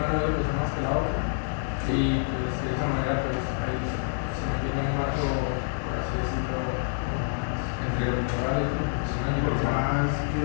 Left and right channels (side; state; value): right; silent; digital silence